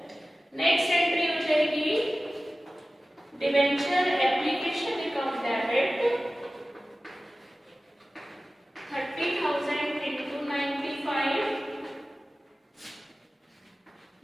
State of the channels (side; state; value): both; normal; correlation 0.96